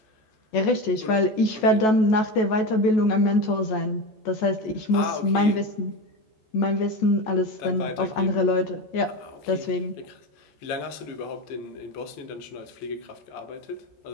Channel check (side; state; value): right; late; 14 ms